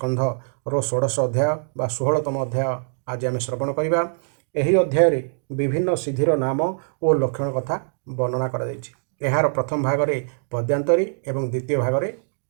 ଷୋଡ଼ଶ ଅଧ୍ୟାୟ ବା 16ତମ ଅଧ୍ୟାୟ ଆଜି ଆମେ ଶ୍ରବଣ କରିବା। ଏହି ଅଧ୍ୟାୟରେ ବିଭିନ୍ନ ସିଦ୍ଧିର ନାମ ଓ ଲକ୍ଷଣ କଥା ବର୍ଣ୍ଣନା କରାଯାଇଛି। ଏହାର ପ୍ରଥମ ଭାଗରେ ପଦ୍ୟାନ୍ତରୀ ଏବଂ ଦ୍ୱିତୀୟ ଭାଗରେ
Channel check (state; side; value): silent; left; digital silence